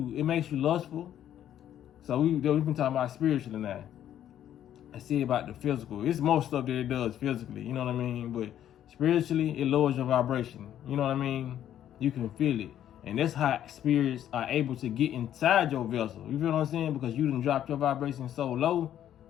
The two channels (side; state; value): right; quieter; 10.9 dB